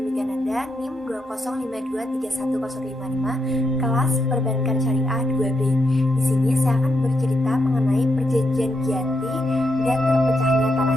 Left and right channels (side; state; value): both; normal; correlation 0.81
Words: Migananda, NIM 205231055, kelas Perbankan Syariah 2B. Di sini saya akan bercerita mengenai perjanjian Giyanti dan terpecahnya